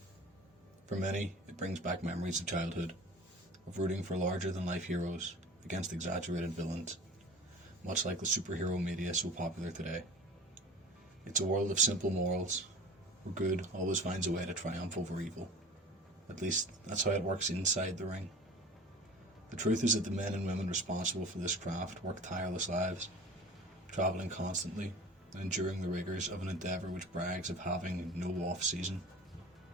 For many, it brings back memories of childhood, of rooting for larger-than-life heroes against exaggerated villains, much like the superhero media so popular today. It's a world of simple morals, where good always finds a way to triumph over evil. At least, that's how it works inside the ring. The truth is that the men and women responsible for this craft work tireless lives, travelling constantly and enduring the rigours of an endeavour which brags of having no off-season.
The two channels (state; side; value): normal; both; correlation 0.39